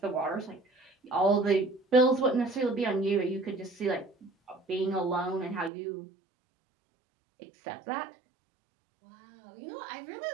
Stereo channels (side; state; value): left; drops out; at 5.7 s